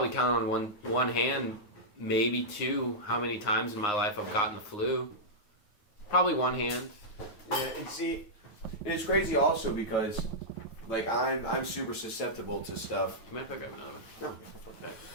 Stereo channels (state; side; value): late; right; 9.6 ms